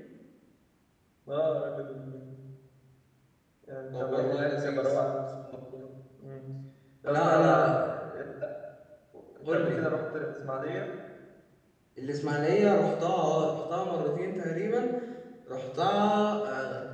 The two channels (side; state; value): both; identical; correlation 1.00